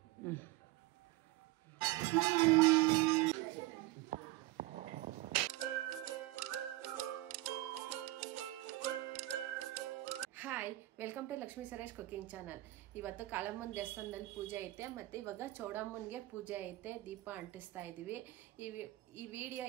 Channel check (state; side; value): quieter; left; 18.1 dB